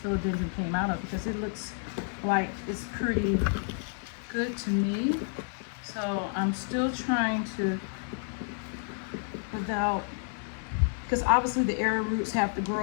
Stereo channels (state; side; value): silent; right; 56 dB below the other